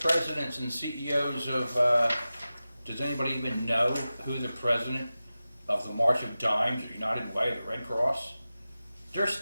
and CEOs of, does anybody even know who the president of the March of Dimes, the United Way, the Red Cross? They're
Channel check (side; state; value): both; inverted; correlation -0.95